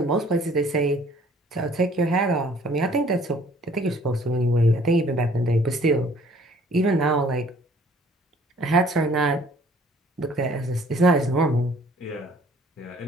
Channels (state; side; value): normal; both; correlation 0.56